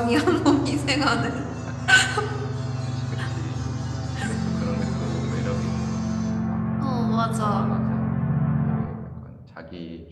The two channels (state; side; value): identical; both; correlation 1.00